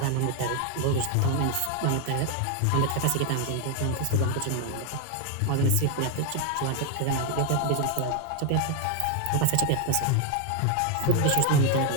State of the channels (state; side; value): different; both; correlation 0.01